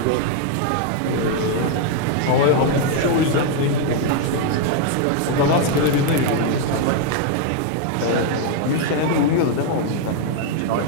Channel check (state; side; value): different; both; correlation 0.00